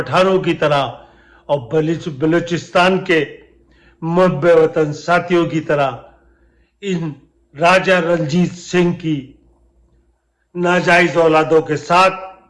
की तरह और बलूचिस्तान के मुहब्बे वतन साथियों की तरह इन राजा रणजीत सिंह की नाजायज औलादों के साथ,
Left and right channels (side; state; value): both; identical; correlation 1.00